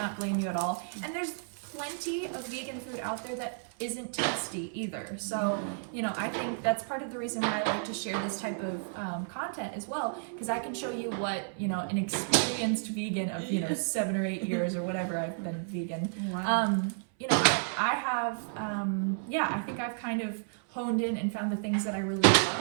blame you at all. And there's plenty of vegan food out there that isn't tasty either. So, you know, I think that's part of the reason why I like to share this type of content as well, because I can show you what, you know, an experienced vegan of, you know, 7 or 8 years or whatever I've been vegan. Wow. You know, I have, I think I've kind of honed in and found the things that I really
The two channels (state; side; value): silent; left; 57 dB below the other